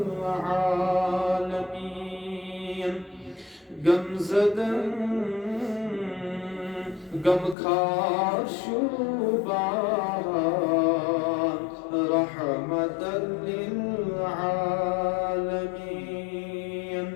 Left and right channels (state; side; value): drops out; right; at 7.6 s